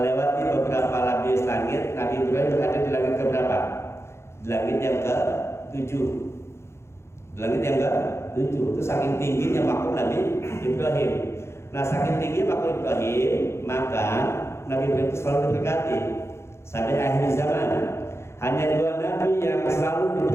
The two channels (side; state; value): right; late; 0.13 ms